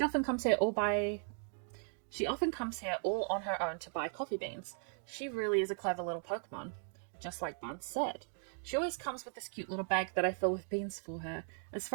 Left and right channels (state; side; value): silent; left; 53 dB below the other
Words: often comes here all on her own to buy coffee beans. She really is a clever little Pokemon. Just like Barnes said. She always comes with this cute little bag that I fill with beans for her. As